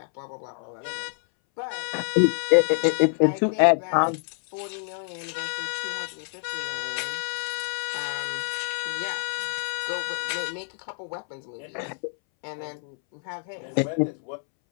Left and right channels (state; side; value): silent; right; 60 dB below the other